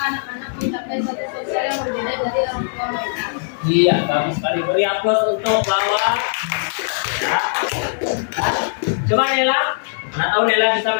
anak-anak mencapai status sosial yang berbeda dari orang tua mereka. Iya, bagus sekali. Beri aplaus untuk lawan. Ya. Coba Nela, mana tahu Nela bisa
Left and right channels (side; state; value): right; silent; digital silence